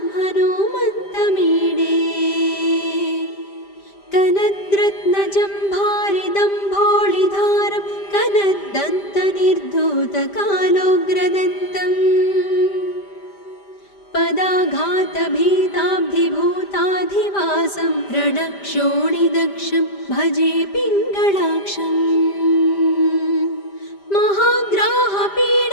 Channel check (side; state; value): right; late; 5.0 ms